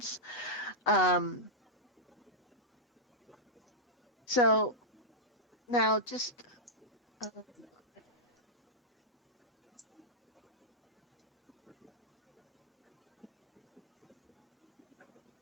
So now just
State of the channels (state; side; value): normal; both; correlation -0.09